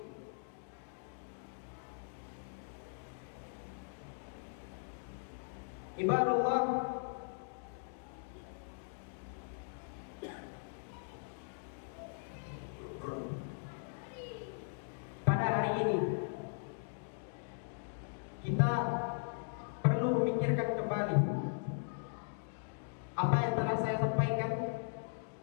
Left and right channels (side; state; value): right; silent; digital silence